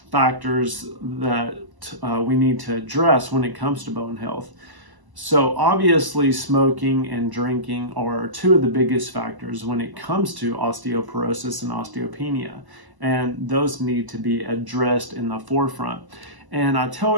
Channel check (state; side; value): late; left; 1.0 ms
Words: factors that we need to address when it comes to bone health. So obviously smoking and drinking are 2 of the biggest factors when it comes to osteoporosis and osteopenia, and those need to be addressed in the forefront. And I tell